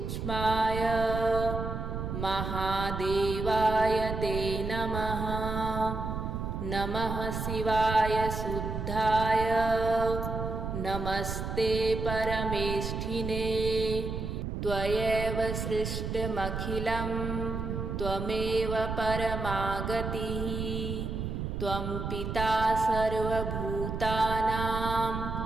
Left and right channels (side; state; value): right; noise; rumble, 4 dB below the sound